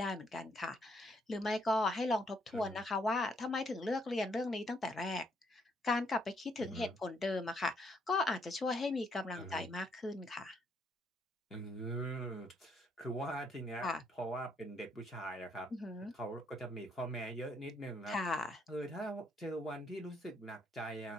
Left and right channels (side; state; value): both; normal; correlation 0.71